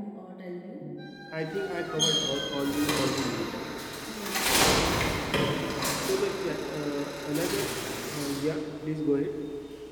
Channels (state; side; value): identical; both; correlation 1.00